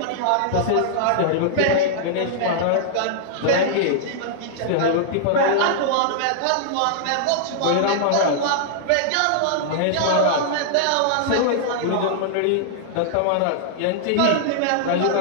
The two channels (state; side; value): different; both; correlation -0.01